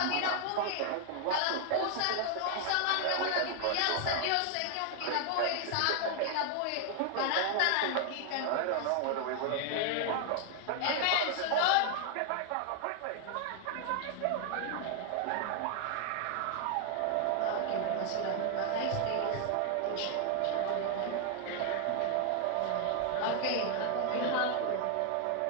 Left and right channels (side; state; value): both; different; correlation 0.00